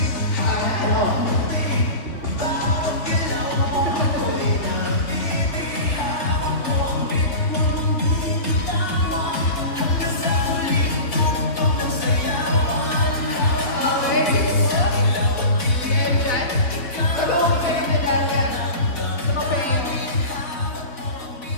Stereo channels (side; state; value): right; late; 3.5 ms